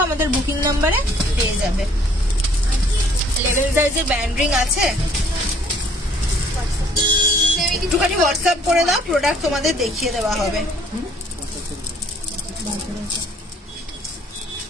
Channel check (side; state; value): both; normal; correlation 0.59